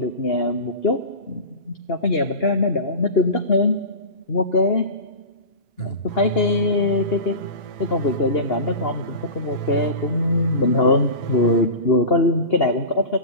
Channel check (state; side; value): late; right; 2.8 ms